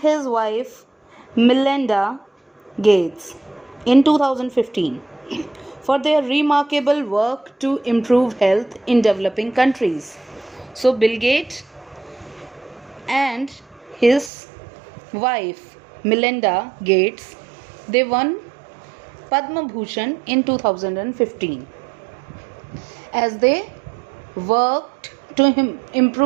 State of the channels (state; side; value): drops out; left; at 14.3 s